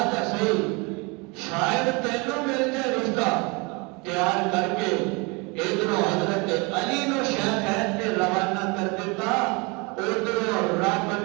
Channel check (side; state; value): left; quieter; 28.6 dB